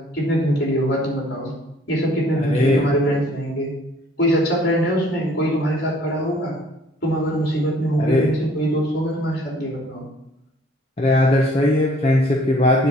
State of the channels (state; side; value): normal; both; correlation 0.57